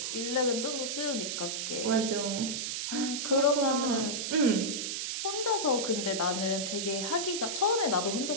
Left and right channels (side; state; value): right; noise; hiss, 2 dB below the sound